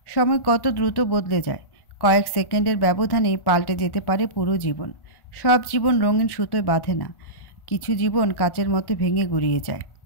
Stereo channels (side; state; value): right; late; 1.4 ms